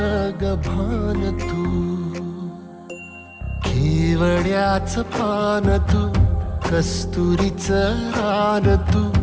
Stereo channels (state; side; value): identical; both; correlation 1.00